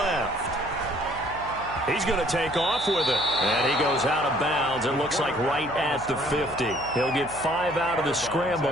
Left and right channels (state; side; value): noise; right; hum, 16 dB below the sound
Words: He's going to take off with it. And he goes out of bounds. It looks like right at the 50. He'll get 5 out of the